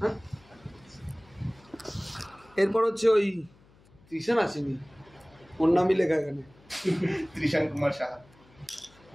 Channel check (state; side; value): noise; left; hum, 28 dB below the sound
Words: হ্যাঁ এরপর হচ্ছে ওই ত্রিশান আসেনি ওর নামই লেখা এখানে ত্রিশান কুমার সাহা